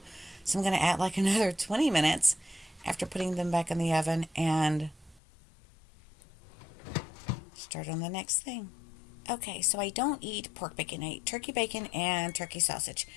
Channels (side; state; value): right; drops out; at 5.2 s